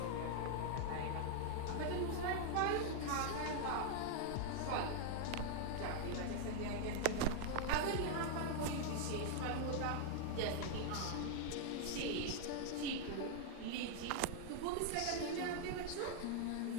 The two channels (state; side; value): different; both; correlation 0.00